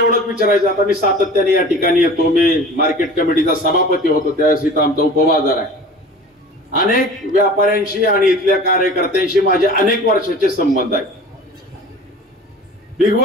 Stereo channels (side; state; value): both; normal; correlation 0.40